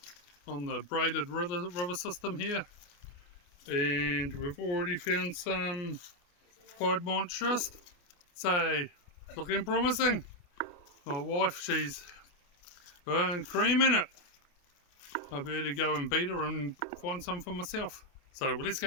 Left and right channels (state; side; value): late; right; 28 ms